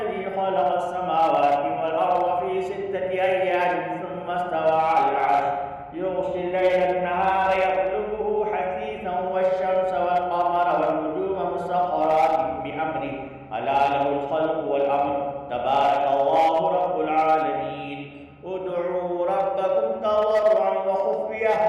خلق السماوات والأرض في 6 أيام ثم استوى على العرش يغشي الليل النهار يطلبه حثيثا والشمس والقمر والنجوم مسخرات بأمره ألا له الخلق والأمر تبارك الله رب العالمين ادعوا ربكم تضرعا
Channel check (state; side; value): identical; both; correlation 1.00